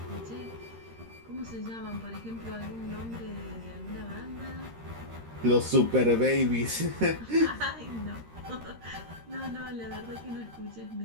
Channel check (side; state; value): left; late; 13 ms